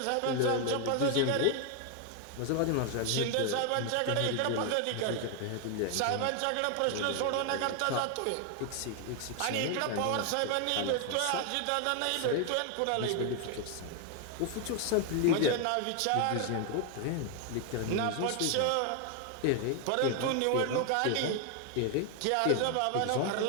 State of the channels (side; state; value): both; different; correlation 0.00